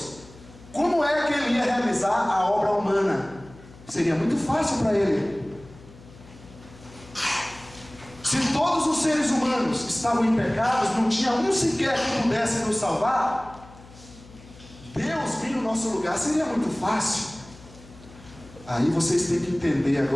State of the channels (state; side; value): noise; left; hum, 21 dB below the sound